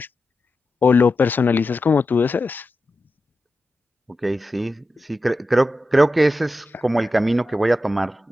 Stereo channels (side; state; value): both; normal; correlation 0.91